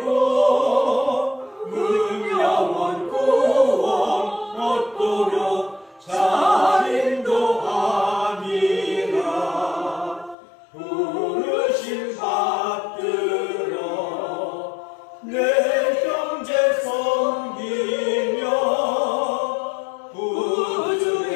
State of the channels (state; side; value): drops out; right; at 10.4 s